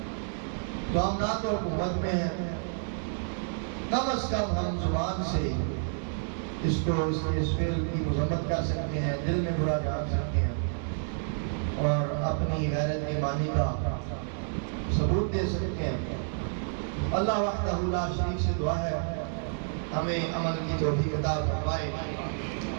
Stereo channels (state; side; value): silent; left; digital silence